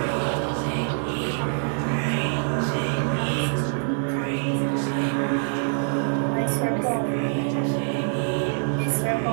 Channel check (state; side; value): silent; left; digital silence